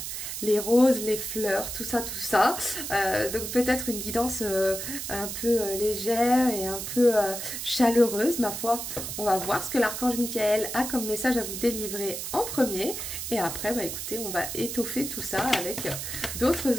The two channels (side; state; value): right; noise; hiss, 6 dB below the sound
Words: les roses, les fleurs, tout ça, tout ça. Donc peut-être une guidance un peu légère et un peu chaleureuse, ma foi. On va voir ce que l'archange Michael a comme message à vous délivrer en premier. Et après, bah écoutez, on va étoffer tout ça avec